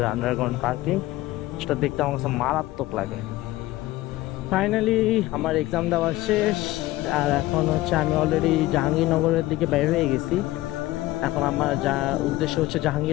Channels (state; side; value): quieter; right; 17.3 dB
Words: আন্ডারগ্রাউন্ড পার্কিং, সেটা দেখতে আমার কাছে মারাত্মক লাগে। ফাইনালি আমার এক্সাম দেওয়া শেষ, আর এখন হচ্ছে আমি অলরেডি জাহাঙ্গীরনগরের দিকে বের হয়ে গেছি। এখন আমার যা উদ্দেশ্য হচ্ছে